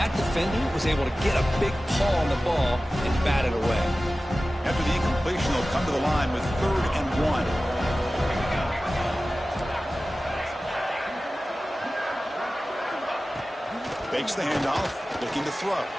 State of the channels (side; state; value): both; normal; correlation 0.96